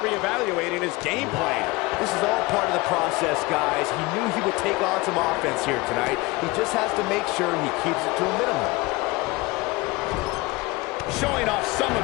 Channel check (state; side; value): quieter; right; 22.7 dB